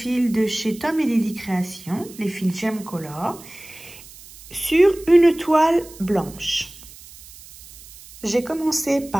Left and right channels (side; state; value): right; noise; hiss, 19 dB below the sound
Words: de chez Tom & Lily Création, les fils Gem Color, sur une toile blanche. J'ai commencé